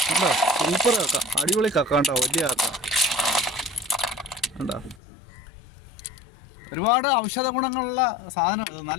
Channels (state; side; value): drops out; right; at 5.0 s